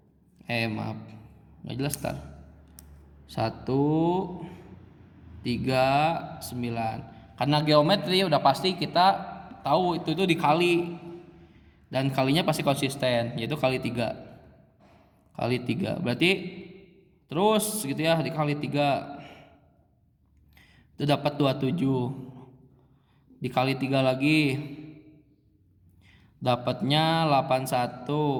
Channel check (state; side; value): identical; both; correlation 1.00